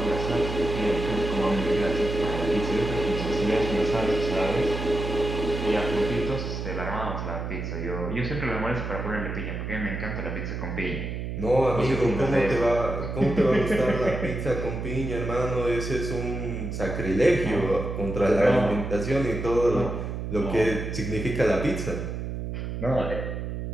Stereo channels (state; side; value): noise; right; hum, 5 dB below the sound